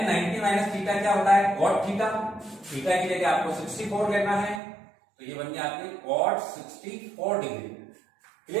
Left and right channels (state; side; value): drops out; left; at 4.6 s